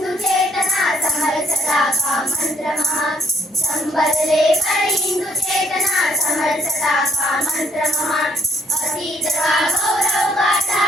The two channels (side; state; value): both; normal; correlation 0.67